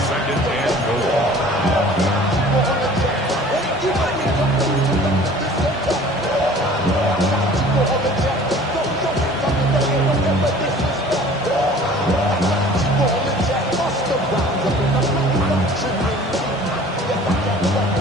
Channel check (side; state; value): both; normal; correlation 0.47